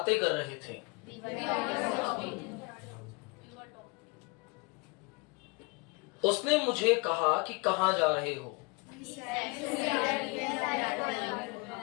कर रहे थे। उसने मुझे कहा कि कहाँ जा रहे हो?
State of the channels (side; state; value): right; quieter; 28.7 dB